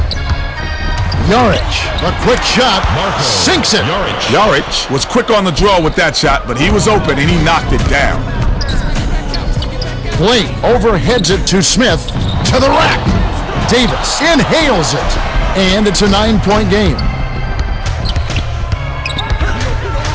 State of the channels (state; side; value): identical; both; correlation 1.00